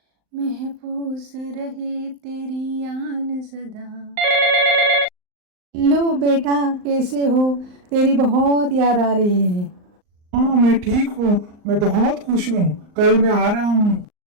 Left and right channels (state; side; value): late; left; 39 ms